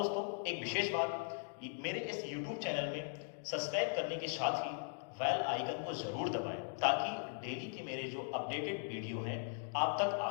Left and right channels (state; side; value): silent; right; digital silence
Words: एक विशेष बात, मेरे इस यूट्यूब चैनल में सब्सक्राइब करने के साथ ही बेल आइकन को जरूर दबाएं ताकि डेली के मेरे जो अपडेटेड वीडियो हैं आप तक